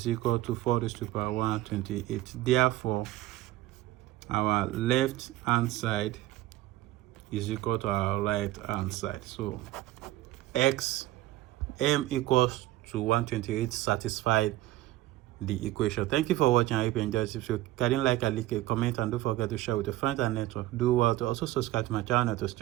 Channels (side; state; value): left; quieter; 16.1 dB